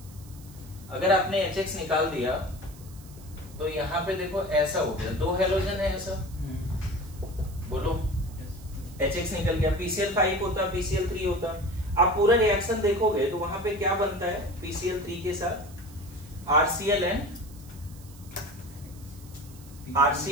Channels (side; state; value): right; noise; hiss, 22 dB below the sound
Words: अगर आपने HX निकाल दिया तो यहाँ पे देखो ऐसा हो गया, दो हेलोजन है ऐसा। बोलो, HX निकल गया। PCl5 होता, PCl3 होता। आप पूरा रिएक्शन देखोगे तो वहां पे क्या बनता है? PCl3 के साथ RCl